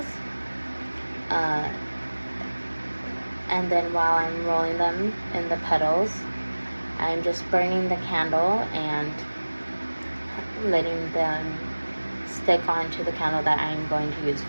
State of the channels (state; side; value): inverted; both; correlation -1.00